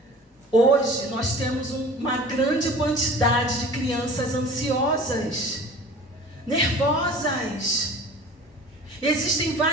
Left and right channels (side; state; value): both; normal; correlation 0.42